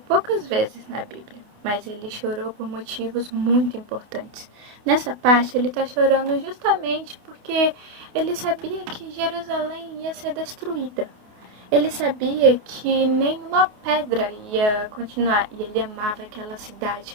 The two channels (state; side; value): late; left; 28 ms